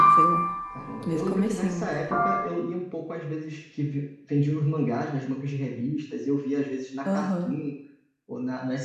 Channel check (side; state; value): both; identical; correlation 1.00